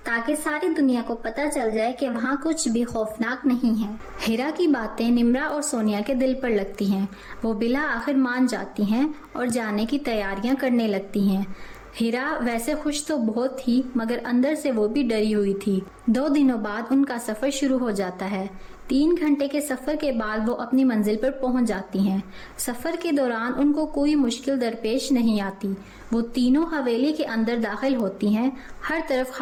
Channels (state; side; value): identical; both; correlation 1.00